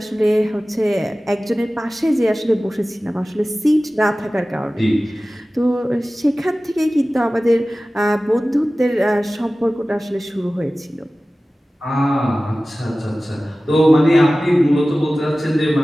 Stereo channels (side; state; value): both; normal; correlation 0.97